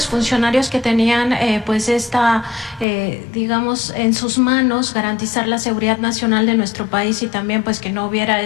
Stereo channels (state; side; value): drops out; right; at 2.9 s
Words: que tenían pues digamos, en sus manos garantizar la seguridad nacional de nuestro país y también pues que no hubiera